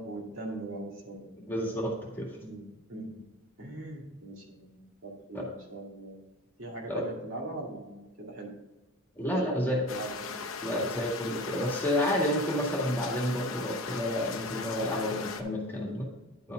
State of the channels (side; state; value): both; normal; correlation 0.36